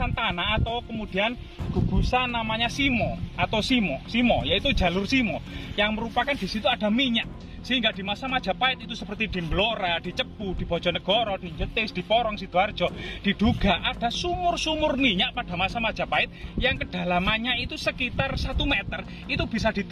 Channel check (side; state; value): both; identical; correlation 1.00